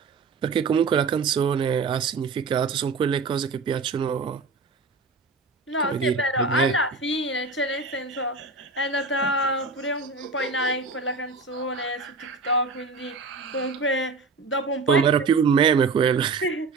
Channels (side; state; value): left; quieter; 4.1 dB